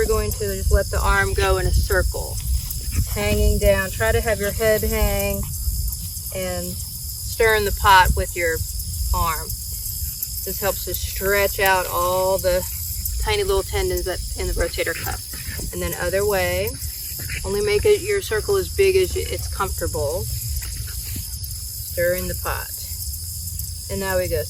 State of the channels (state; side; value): identical; both; correlation 1.00